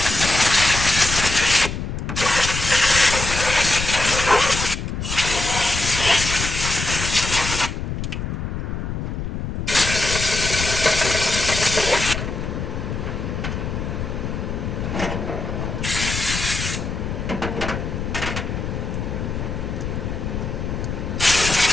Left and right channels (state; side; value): noise; left; rumble, 4 dB below the sound